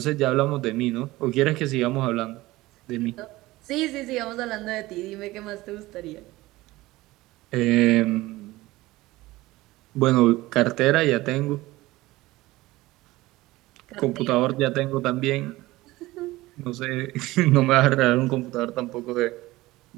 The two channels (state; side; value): quieter; left; 18.8 dB